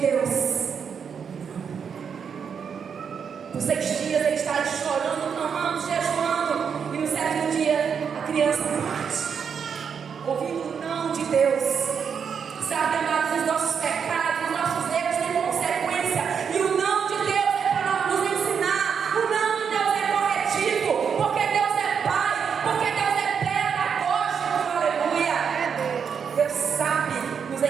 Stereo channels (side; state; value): left; quieter; 6.8 dB